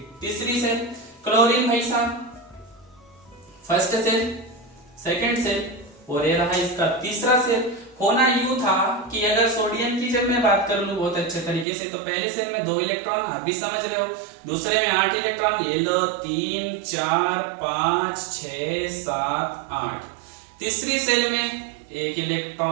तीसरी सेल। क्लोरीन भाई साहब फर्स्ट सेल, सेकेंड सेल, और ये रहा इसका तीसरा सेल। होना यूं था कि अगर सोडियम की जब मैं बात कर लूं बहुत अच्छे तरीके से, तो पहले सेल में 2 इलेक्ट्रॉन, आप भी समझ रहे हो, दूसरे में 8 इलेक्ट्रॉन, ये लो 3, 4, 5, 6, 7, 8, तीसरी सेल में 1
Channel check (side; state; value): left; drops out; at 11.7 s